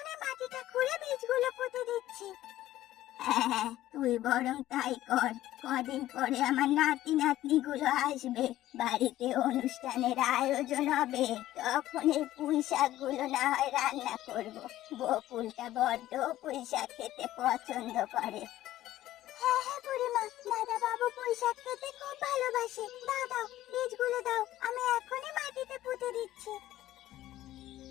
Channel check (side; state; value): right; quieter; 14.4 dB